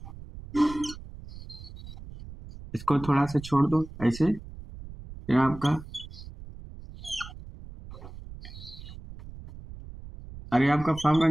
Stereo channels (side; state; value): right; noise; rumble, 14 dB below the sound